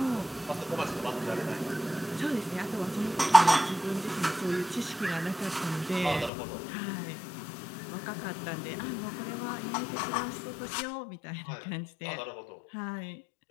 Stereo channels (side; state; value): right; drops out; at 6.3 s